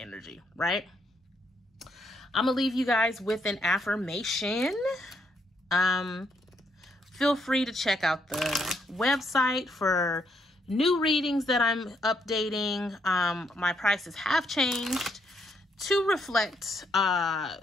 right? I'm going to leave you guys with an affirmation. Feel free to check out the website for new readings that I'm updating. My prices have changed to reflect my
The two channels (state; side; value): normal; both; correlation 0.75